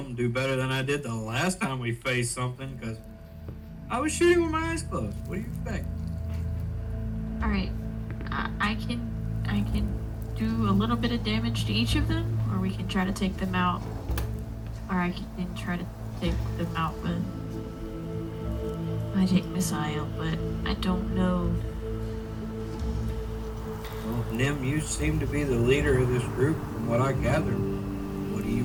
Do better than I did the last time we faced something, because I was shooting with my eyes closed. What do you expect? Alright. I can do a little bit of damage to each of them, or we can try to take them out. Or I can try to take them out with magic missile, but I don't know. Well, Nim, you seem to be the leader of this group from what I gathered. What do you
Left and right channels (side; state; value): both; identical; correlation 1.00